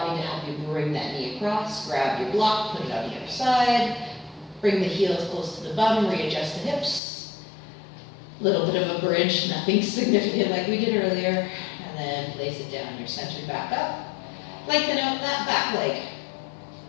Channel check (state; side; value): drops out; right; at 7.0 s